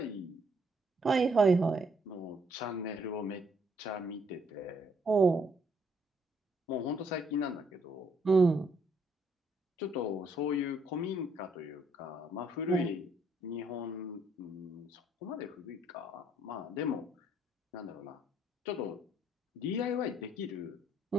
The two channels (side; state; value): both; normal; correlation 0.69